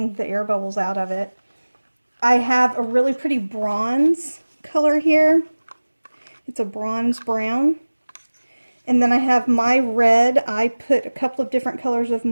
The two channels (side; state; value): both; inverted; correlation -1.00